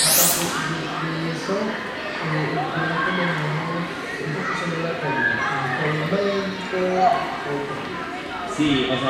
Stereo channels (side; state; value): both; identical; correlation 1.00